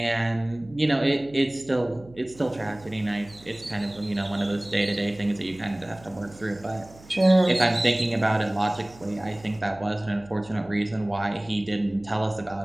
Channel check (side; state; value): right; noise; hum, 22 dB below the sound